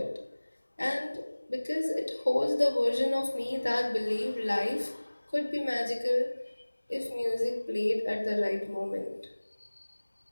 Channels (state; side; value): inverted; both; correlation -1.00